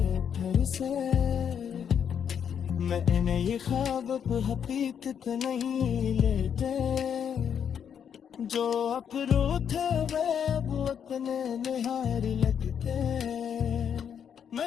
फिर से। मैंने ये ख्वाब अब हकीकत नहीं लेते, जो अपरू थे वे अब अपने निहार लगते। मैं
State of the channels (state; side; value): quieter; right; 8.0 dB